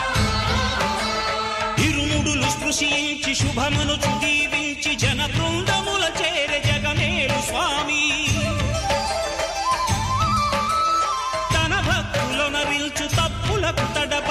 ఇరుముడులు స్పృశించి శుభమనుచు దీవించి జన బృందముల చేరే జగమేలు స్వామి తన భక్తులొనరిల్చు తప్పులకు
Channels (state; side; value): identical; both; correlation 1.00